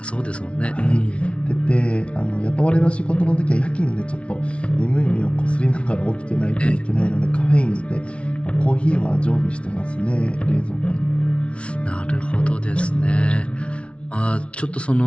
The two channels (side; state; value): right; late; 0.060 ms